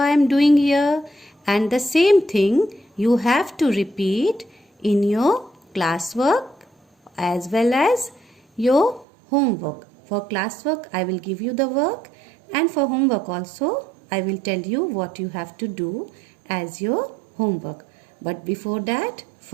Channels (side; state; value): left; drops out; at 9.1 s